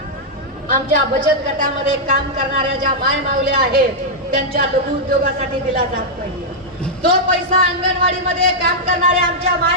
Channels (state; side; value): normal; both; correlation -0.06